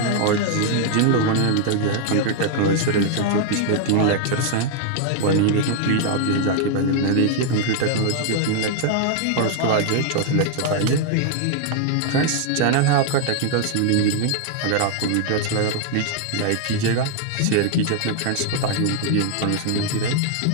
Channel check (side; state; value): both; different; correlation 0.00